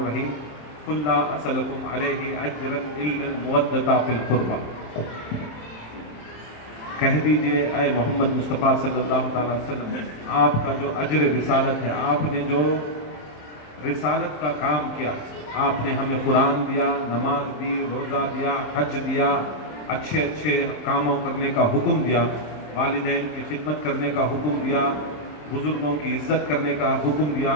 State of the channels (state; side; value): late; right; 27 ms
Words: قل لا اسألکم علیہ اجرا الا المودۃ فی القربى۔ کہہ دیجئے اے محمد مصطفیٰ صلی اللہ تعالیٰ وسلم، آپ کا جو اجر رسالت ہے، آپ نے جو رسالت کا کام کیا، آپ نے ہمیں قرآن دیا، نماز دی، روزہ دیا، حج دیا، اچھے کاموں کرنے کا حکم دیا، والدین کی خدمت کرنے کا حکم دیا، بزرگوں کی عزت کرنے کا حکم دیا،